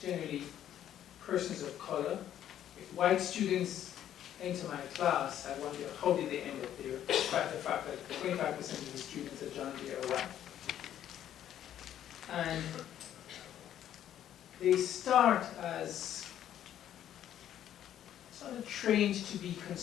persons of color. If white students enter my class, I wonder how did they end up there, despite the fact that 25% of the students at John Jay are white. And they start as sort of trained to be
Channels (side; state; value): right; quieter; 11.0 dB